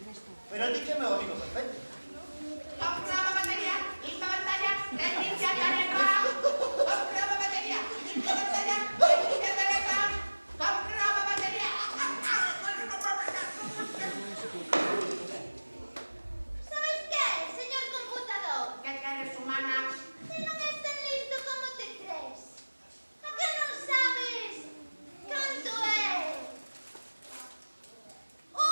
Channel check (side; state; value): both; inverted; correlation -1.00